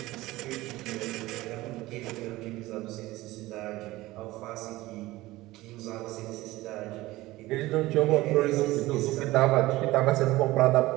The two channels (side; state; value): left; quieter; 18.4 dB